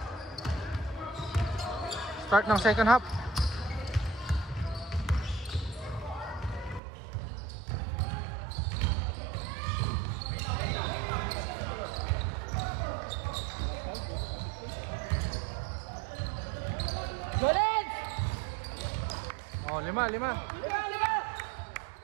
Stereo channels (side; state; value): left; drops out; at 6.8 s